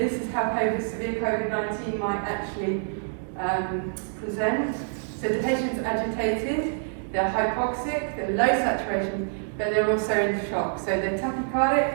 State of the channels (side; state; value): left; silent; digital silence